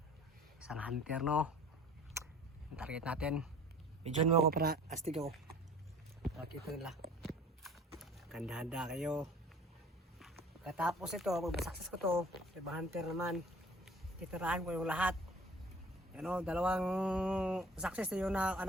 Isang hunter, no? Ang target natin. Medyon mo ako para astig ako. Pakita nila. Handa-handa kayo. Katapos ito, pag masakses ko to, ibang hunter naman. Titirahan ko yung lahat. Ano, dalawang success na yun na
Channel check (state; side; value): normal; both; correlation 0.48